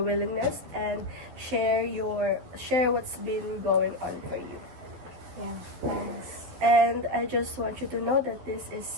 willingness and share what's been going on for you. Yeah, thanks. And I just want you to know that this is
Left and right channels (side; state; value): left; late; 12 ms